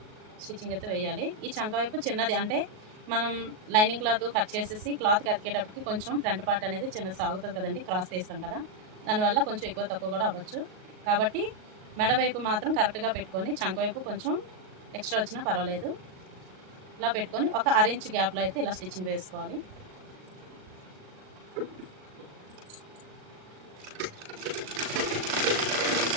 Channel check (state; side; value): late; left; 38 ms